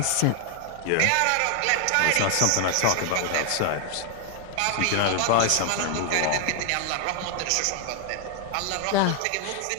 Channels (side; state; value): both; different; correlation 0.00